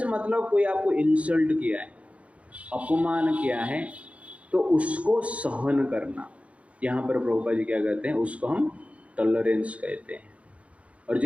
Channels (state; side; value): late; left; 0.064 ms